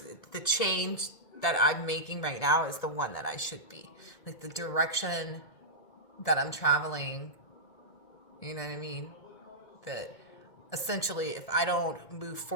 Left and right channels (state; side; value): late; right; 1.7 ms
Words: the change that I'm making right now is the one that I should be. Like the direction that I'm traveling, you know what I mean? That essentially, if I don't move